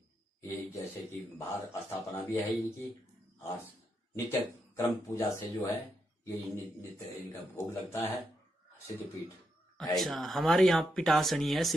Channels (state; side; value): normal; both; correlation 0.82